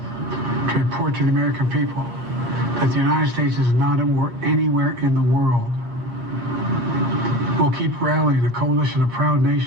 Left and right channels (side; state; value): left; late; 8.5 ms